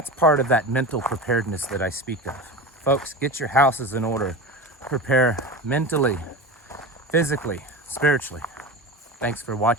part of that mental preparedness that I speak of. Folks, get your houses in order. Prepare mentally, physically, spiritually. Thanks for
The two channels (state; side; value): normal; both; correlation 0.28